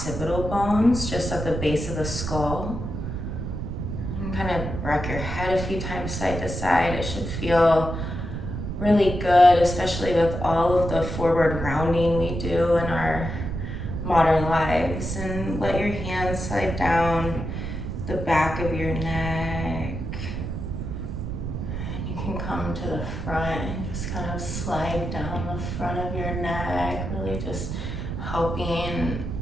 bones, just at the base of the skull. And kind of rock your head a few times side to side. It should feel really good, especially with all of the forward rounding we do in our modern lives. And let your hands slide down the back of your neck. And you can come to the front and just kind of slide down the front of your neck, really just helping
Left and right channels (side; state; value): right; noise; rumble, 5 dB below the sound